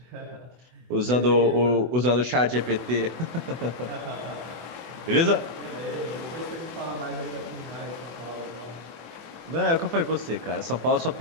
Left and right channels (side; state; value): left; late; 24 ms